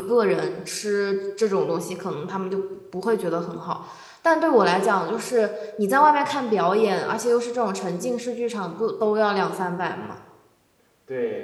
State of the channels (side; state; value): both; identical; correlation 1.00